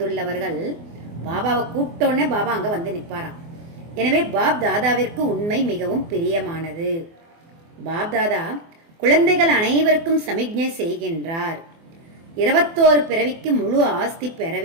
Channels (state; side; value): late; left; 24 ms